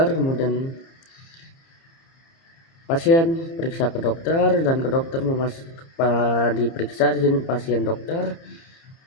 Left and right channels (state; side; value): late; right; 30 ms